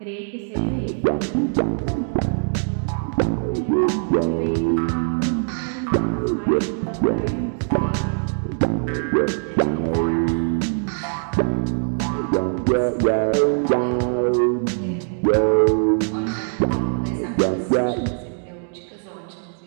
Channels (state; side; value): silent; left; 57 dB below the other